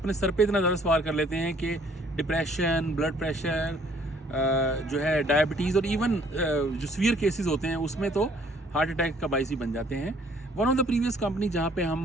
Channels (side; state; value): both; normal; correlation 0.60